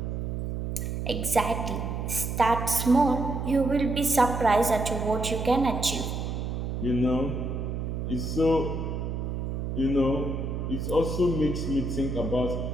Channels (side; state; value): right; noise; hum, 3 dB below the sound